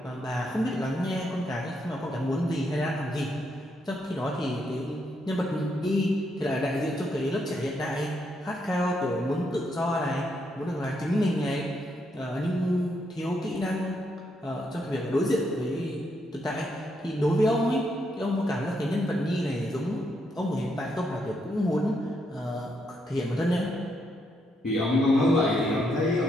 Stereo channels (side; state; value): both; normal; correlation 0.78